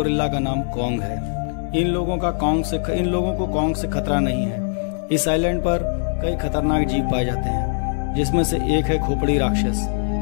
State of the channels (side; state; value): right; silent; digital silence